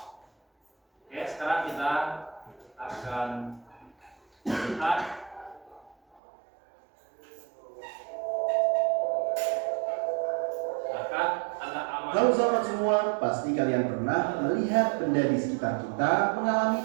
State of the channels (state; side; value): drops out; left; at 6.2 s